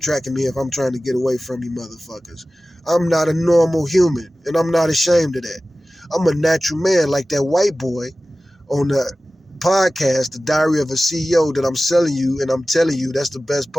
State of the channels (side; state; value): both; normal; correlation 0.96